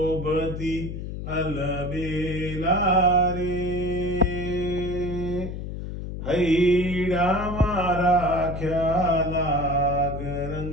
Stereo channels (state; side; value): noise; left; hum, 7 dB below the sound